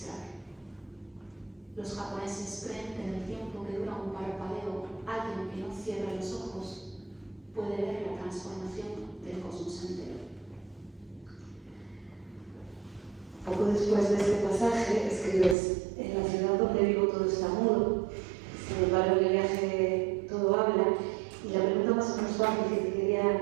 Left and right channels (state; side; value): drops out; left; at 15.6 s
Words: Los japoneses creen que en el tiempo que dura un parpadeo, alguien que no cierra los ojos puede ver la transformación del cosmos entero. Poco después de este pasaje, escribes: en la ciudad donde vivo todo está mudo, sin embargo en el viaje todo habla. Y la pregunta más o menos fácil que te quería